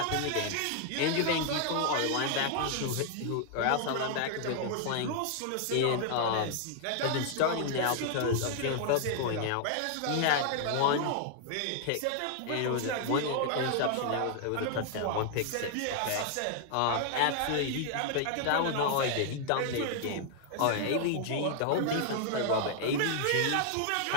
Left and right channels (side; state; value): both; different; correlation 0.00